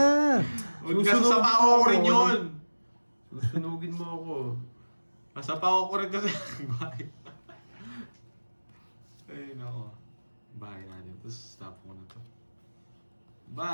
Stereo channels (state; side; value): inverted; both; correlation -1.00